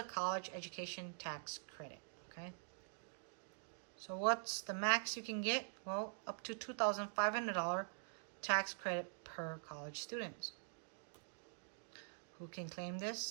college education tax credit, okay? So what's the max you can get? Well, up to $2,500 tax credit per college student. Who can claim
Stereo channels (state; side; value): silent; left; digital silence